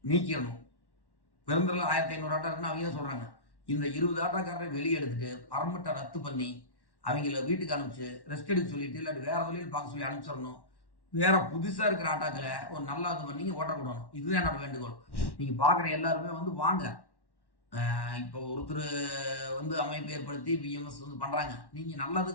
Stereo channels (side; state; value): right; late; 1.1 ms